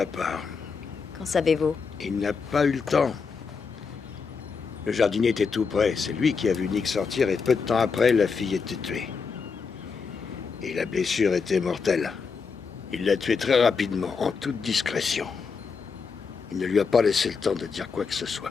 part. Qu'en savez-vous? Il n'a pas eu le temps. Le jardinier était tout près. C'est lui qui a vu Nick sortir et peu de temps après, la fille était tuée. Et la blessure était mortelle. Il l'a tuée très rapidement, en toute discrétion. Il ne lui a pas laissé le temps de dire quoi que ce soit.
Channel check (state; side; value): quieter; right; 5.3 dB